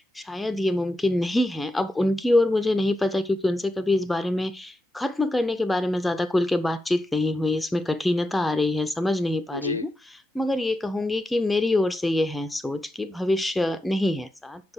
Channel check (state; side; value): normal; both; correlation 0.89